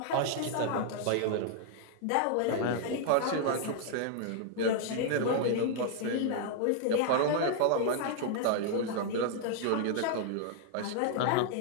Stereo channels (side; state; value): both; different; correlation -0.01